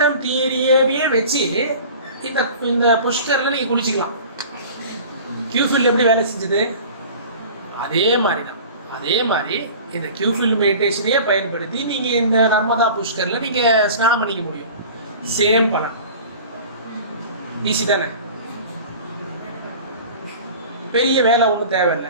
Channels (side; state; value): both; inverted; correlation -0.41